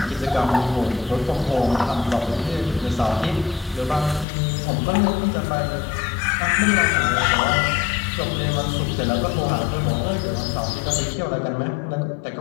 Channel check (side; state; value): right; drops out; at 4.2 s